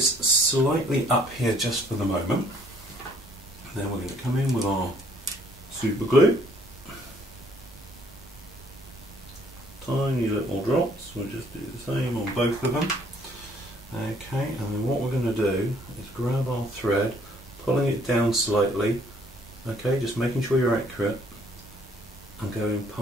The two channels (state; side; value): normal; both; correlation 0.62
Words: slightly up here just for the moment. And then we're going to come in with our super glue. Tiny little drops, we'll just do the same on both of them. Okay, and then what we're going to do is grab our thread, pulling it down slightly, okay, just making sure you're accurate, and going